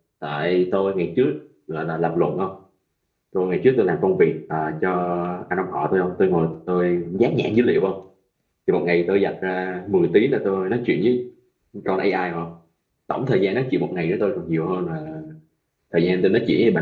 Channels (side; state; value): both; identical; correlation 1.00